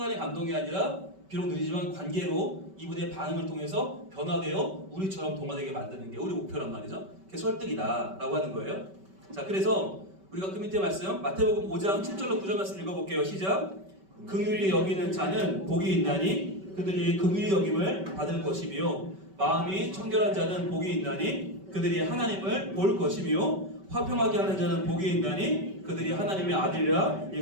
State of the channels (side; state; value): left; late; 5.2 ms